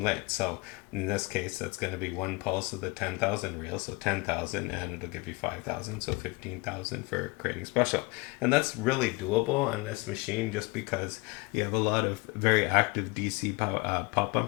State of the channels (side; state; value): right; quieter; 24.9 dB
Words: lit. So in this case, that's going to be 1 pulse of the 10,000 reel, so 10,000, and it'll give you 5,000, so 15,000 for creating special. And that's really doable on this machine just because you have a lot of very active DC pop